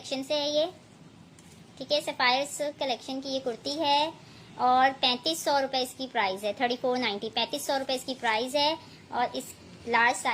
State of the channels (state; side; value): identical; both; correlation 1.00